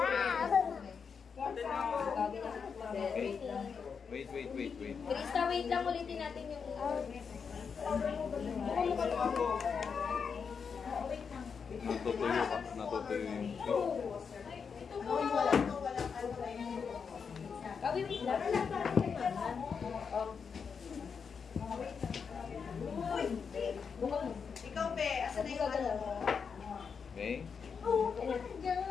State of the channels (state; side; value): quieter; right; 6.1 dB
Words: Wait. Krista, wait lang. Ulitin natin yung... Natutuyo yung... Kawin, wait lang. Ikaw, Be. Asa na yung ano? Okay?